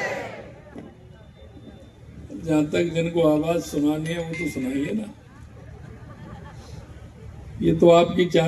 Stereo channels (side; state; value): both; identical; correlation 1.00